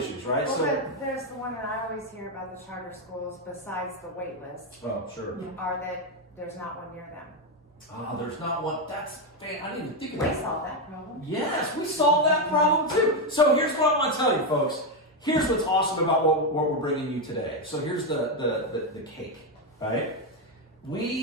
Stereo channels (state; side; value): normal; both; correlation 0.06